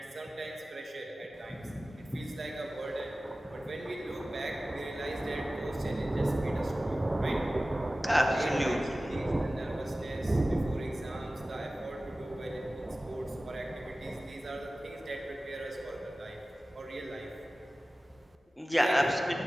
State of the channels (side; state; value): both; normal; correlation 0.96